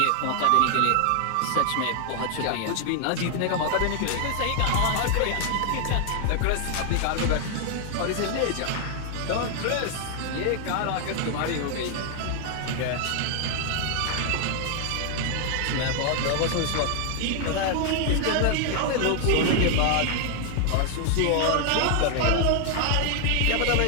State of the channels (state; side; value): different; both; correlation 0.00